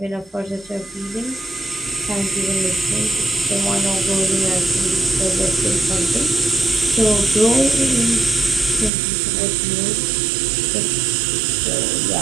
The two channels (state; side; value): drops out; left; at 8.9 s